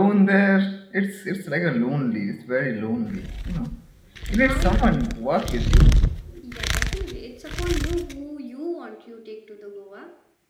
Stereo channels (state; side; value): identical; both; correlation 1.00